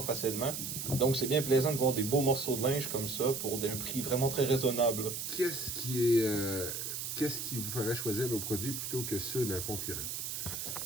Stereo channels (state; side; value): noise; right; hiss, 4 dB below the sound